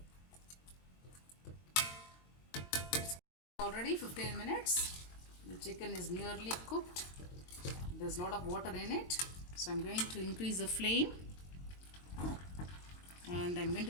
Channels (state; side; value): late; right; 22 ms